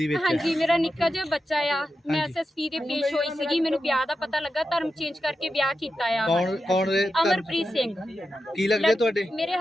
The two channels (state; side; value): normal; both; correlation 0.90